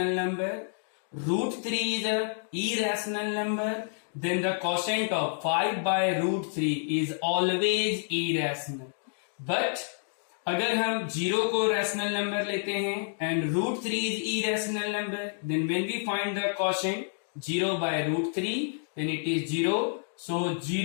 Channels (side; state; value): right; silent; digital silence